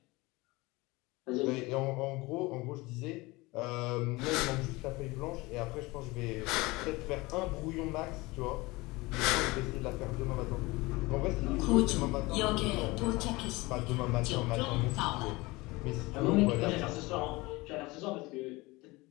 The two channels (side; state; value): right; quieter; 22.4 dB